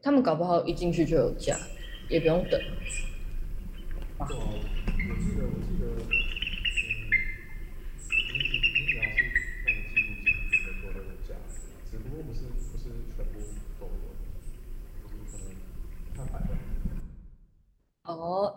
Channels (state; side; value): identical; both; correlation 1.00